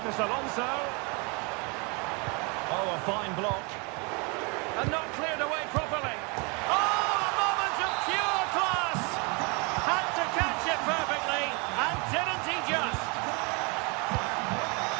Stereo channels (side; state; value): left; quieter; 31.3 dB